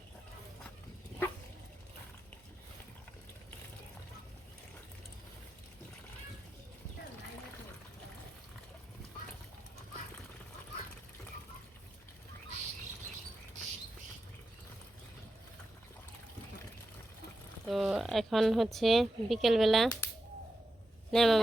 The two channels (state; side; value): normal; both; correlation 0.89